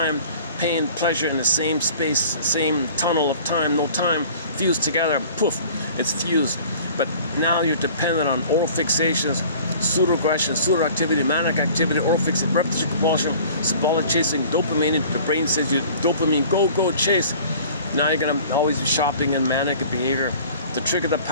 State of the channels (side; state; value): both; inverted; correlation -0.47